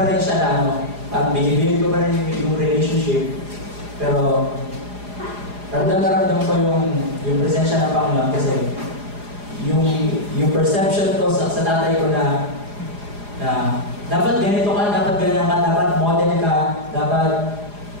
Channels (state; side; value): late; left; 4.9 ms